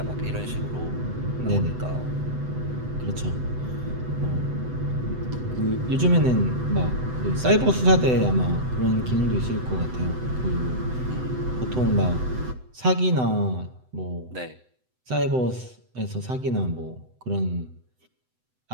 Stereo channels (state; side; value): late; left; 7.9 ms